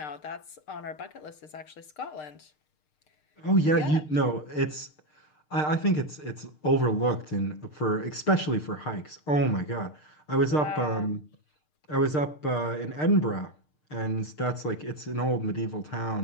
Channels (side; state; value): right; late; 6.6 ms